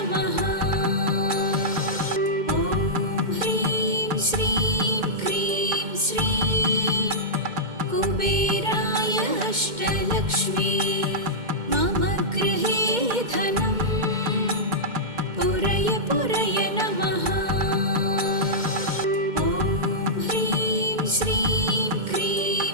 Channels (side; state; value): left; late; 2.1 ms